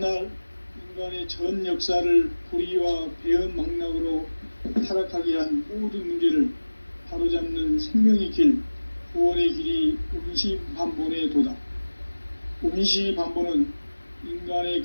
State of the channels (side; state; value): both; inverted; correlation -1.00